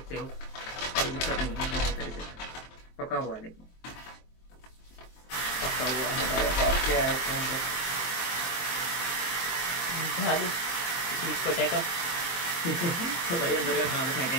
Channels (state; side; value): late; right; 23 ms